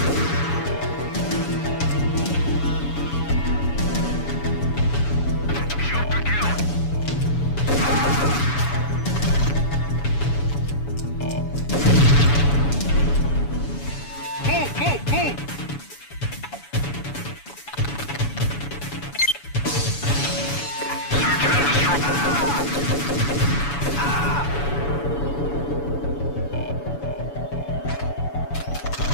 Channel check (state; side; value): late; right; 7.0 ms